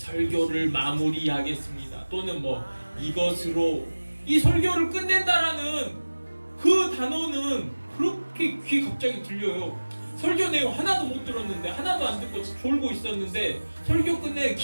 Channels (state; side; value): inverted; both; correlation -1.00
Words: 마무리하겠습니다. 또는 뭐 이것으로 이 설교를 끝낸다라는 그 단어는 그렇게 귀에 갑자기 들려요. 설교 내용 하나도 못 들었는데, 하나도 안 듣고 졸고 있었는데 설교 끝내